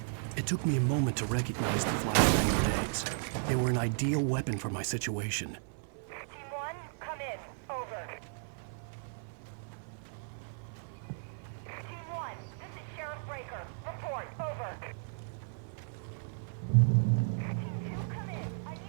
It took me a moment to recognize the flashbang grenades. They were an ideal weapon for my situation. Team 1, come in. Over. Team 1, this is Sheriff Breaker. Report. Over. Team 2, come in. I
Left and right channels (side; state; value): left; silent; 55 dB below the other